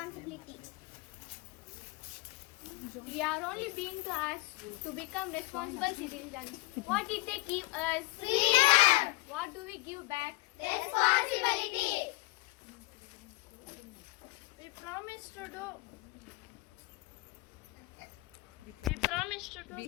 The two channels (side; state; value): right; quieter; 22.3 dB